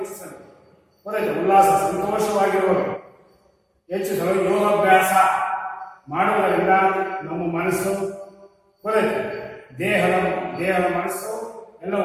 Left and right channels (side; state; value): both; identical; correlation 1.00